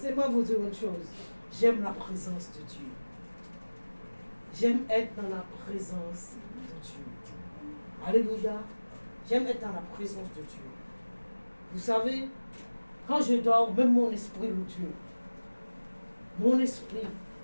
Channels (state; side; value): inverted; both; correlation -1.00